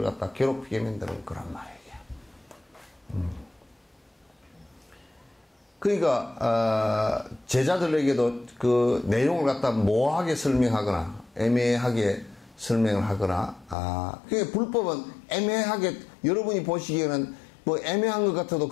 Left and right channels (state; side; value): drops out; right; at 13.8 s